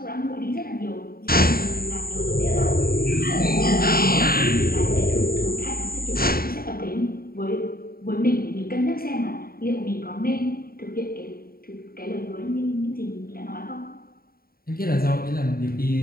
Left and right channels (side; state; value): right; late; 0.43 ms